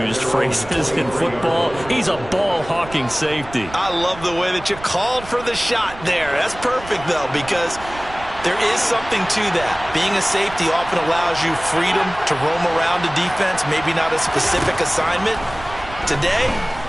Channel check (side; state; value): right; noise; rumble, 16 dB below the sound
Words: phrases in football. He's a ball-hawking safety. I love the way that you called for the shot there. That's perfect, though, because there is something to that. Being a safety often allows you freedom to roam around the defense, maybe not a specific assignment. Today,